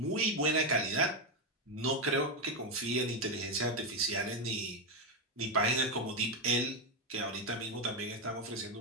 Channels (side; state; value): both; normal; correlation 0.07